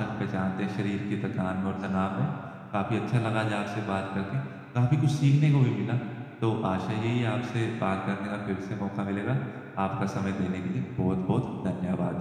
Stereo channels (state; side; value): identical; both; correlation 1.00